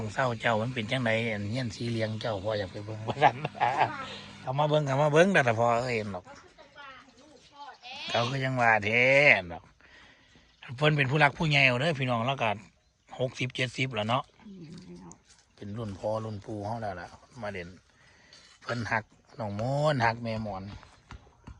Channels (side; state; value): both; identical; correlation 1.00